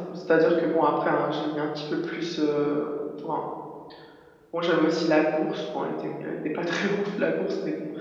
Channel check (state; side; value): identical; both; correlation 1.00